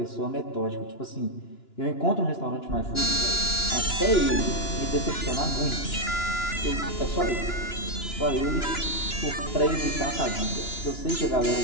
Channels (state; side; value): late; right; 2.9 ms